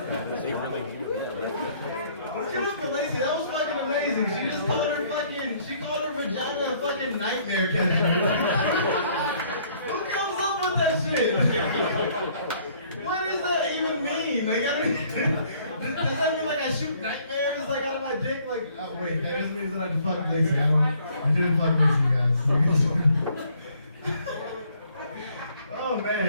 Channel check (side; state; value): both; inverted; correlation -0.62